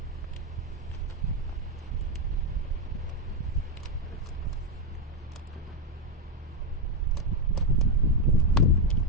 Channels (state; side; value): normal; both; correlation 0.07